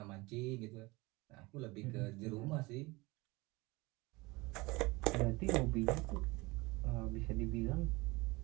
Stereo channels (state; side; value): quieter; left; 23.3 dB